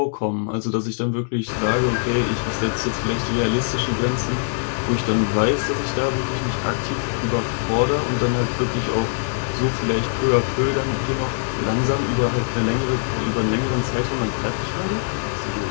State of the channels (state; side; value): silent; right; 64 dB below the other